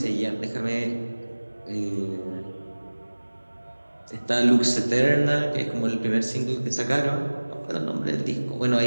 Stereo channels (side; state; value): both; inverted; correlation -1.00